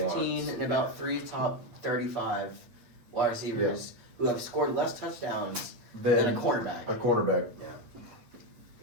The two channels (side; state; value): left; late; 8.7 ms